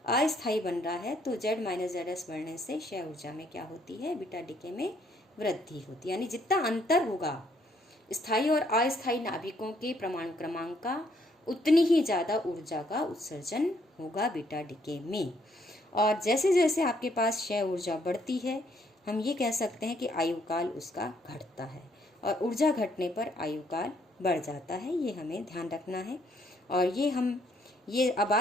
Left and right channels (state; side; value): normal; both; correlation 0.69